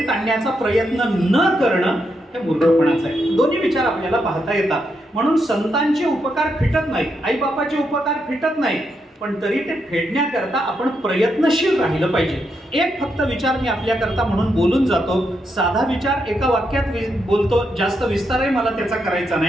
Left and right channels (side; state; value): both; normal; correlation 0.81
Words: आणण्याचा प्रयत्न न करणं हे मूर्खपणाचं आहे. दोन्ही विचार आपल्याला पाहता येतात. म्हणून संतांचे उपकार फिटत नाहीत, आई बापाचे उपकार फिटत नाहीत, पण तरी ते फेडण्याकरता आपण प्रयत्नशील राहिलं पाहिजे. एक फक्त विचार मी आपल्याकरता म्हणून बोलून जातो, साधा विचार एका वाक्यात बोलतो, जास्त विस्तारही मला त्याचा करायचा